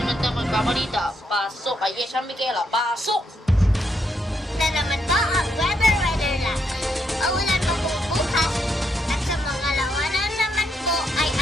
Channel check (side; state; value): both; normal; correlation 0.77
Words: na magbabalita. Pasok kay Yesha Michaela, pasok! Na naman po ang weather lang. Maulan po bukas at sa mga lawanan naman po ay